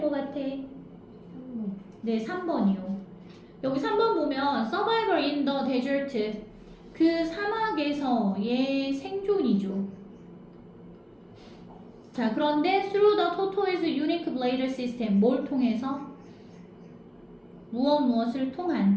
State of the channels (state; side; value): identical; both; correlation 1.00